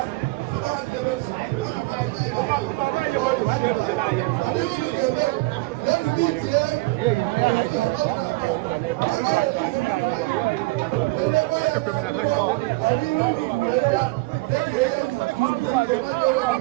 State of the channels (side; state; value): left; quieter; 22.7 dB